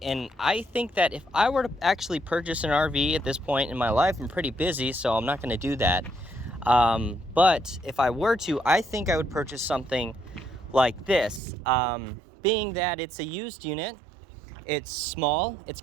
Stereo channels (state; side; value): drops out; left; at 11.4 s